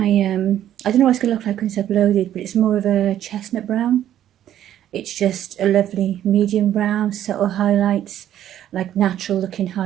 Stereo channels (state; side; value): quieter; left; 11.4 dB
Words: I don't know what it's going to look like when it's uploaded, but it's more of a chestnut brown. It's just a lovely medium brown, subtle highlights, like natural looking